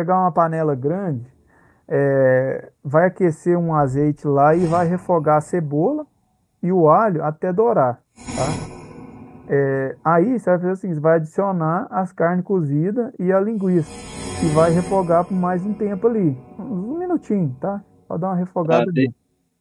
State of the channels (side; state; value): both; identical; correlation 1.00